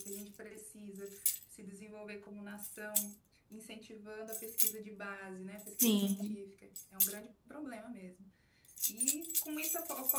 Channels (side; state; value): both; identical; correlation 1.00